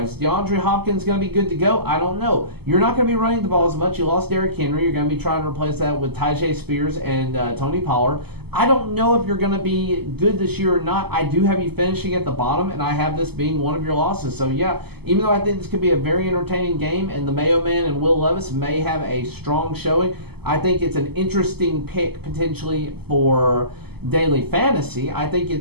DeAndre Hopkins going to be good to go? I don't know. You're not going to be running the ball as much. You lost Derrick Henry. You're going to be trying to replace that with Tyjae Spears and Tony Pollard. I don't know if you're going to be good this year or not. I do have you finishing at the bottom, and I have this being one of your losses. So, yeah, even though I think this could be a very entertaining game, and the Mayo Man and Will Levis may have a strong showing, I think it's an interesting pick potentially for daily fantasy. I think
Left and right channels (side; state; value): left; late; 0.97 ms